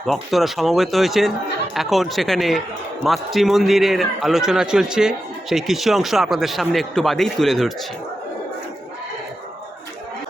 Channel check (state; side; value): normal; both; correlation 0.90